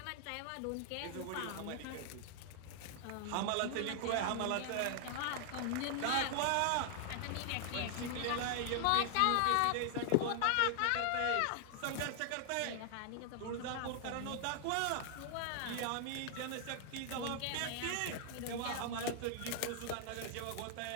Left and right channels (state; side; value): different; both; correlation 0.00